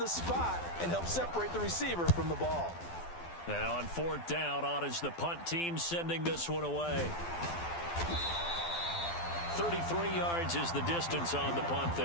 spot and help separate the receiver from the ball. And on fourth down, on is the punt team sending this one away. 33 yards is the distance on the punt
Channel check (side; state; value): right; late; 12 ms